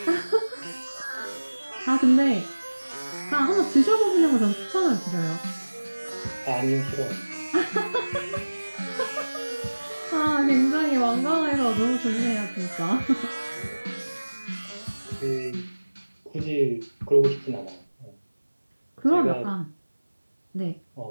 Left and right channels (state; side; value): inverted; both; correlation -1.00